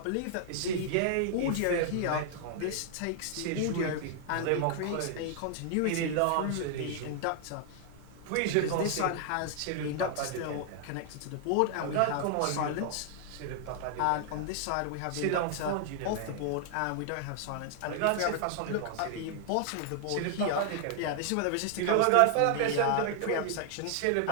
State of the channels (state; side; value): different; both; correlation 0.00